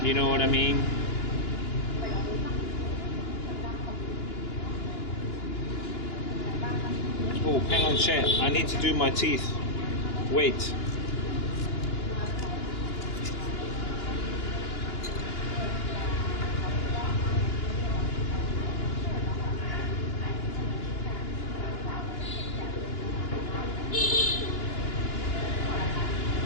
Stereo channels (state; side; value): late; right; 2.9 ms